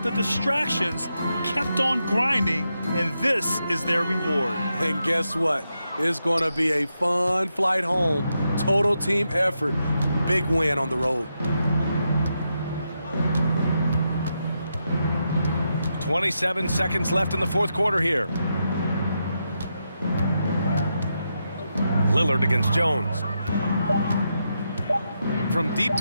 the distractions, kept on grinding, and this is their reward. And guess what? It's going to be a fun flight home. Total team effort. Big win on the road. 27 seconds left in the fourth quarter here. Lillard against Jones. From deep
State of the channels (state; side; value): inverted; both; correlation -0.85